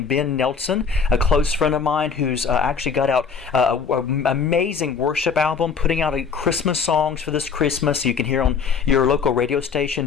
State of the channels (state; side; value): quieter; right; 5.9 dB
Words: Ben Nelson, a close friend of mine who's actually got out an amazing worship album, putting out Christmas songs for this Christmas so you can hear on your local radio